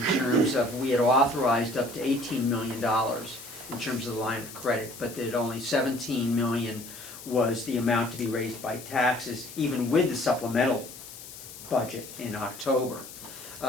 terms of, we had authorized up to $18 million in terms of the line of credit, but that only $17 million was the amount to be raised by taxes, even with the supplemental budget in October.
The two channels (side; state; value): left; noise; hiss, 14 dB below the sound